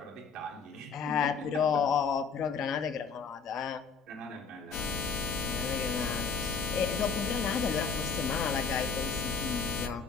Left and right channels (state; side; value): quieter; right; 5.3 dB